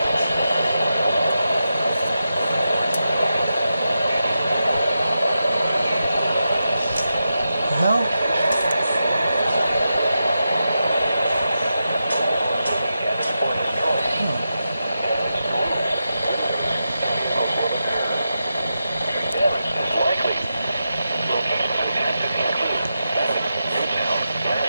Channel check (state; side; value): inverted; both; correlation -0.89